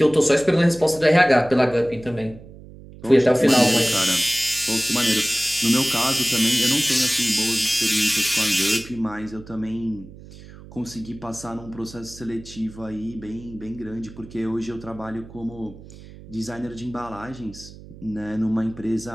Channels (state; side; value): noise; right; hum, 18 dB below the sound